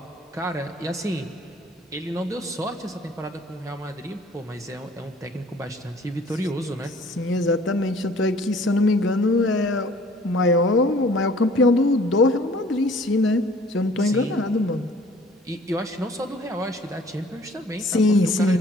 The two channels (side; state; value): both; normal; correlation 0.53